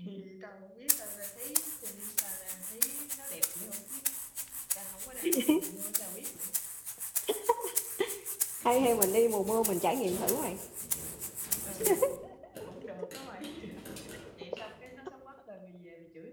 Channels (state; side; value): identical; both; correlation 1.00